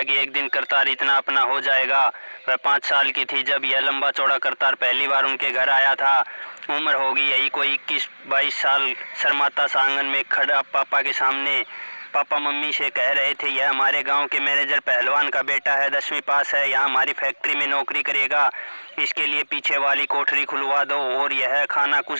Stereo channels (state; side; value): inverted; both; correlation -1.00